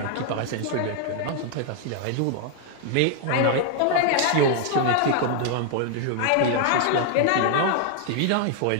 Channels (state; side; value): different; both; correlation 0.00